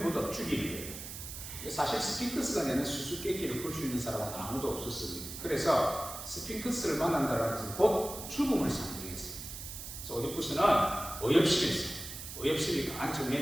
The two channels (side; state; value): right; noise; hiss, 9 dB below the sound